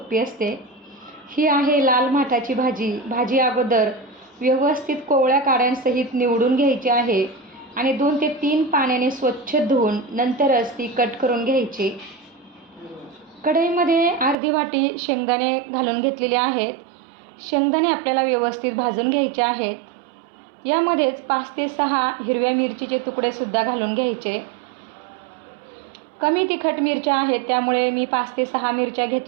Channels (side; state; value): left; drops out; at 14.4 s